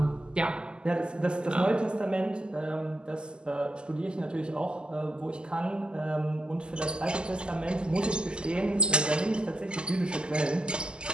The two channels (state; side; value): late; left; 0.049 ms